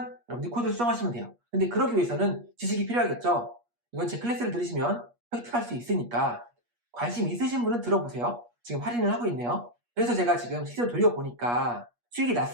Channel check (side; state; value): left; late; 8.4 ms